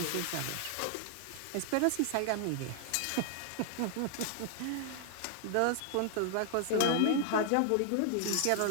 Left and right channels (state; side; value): different; both; correlation 0.00